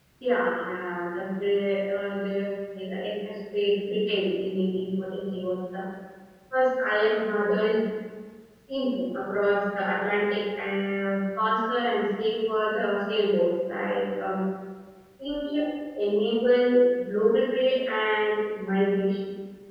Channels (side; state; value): both; identical; correlation 1.00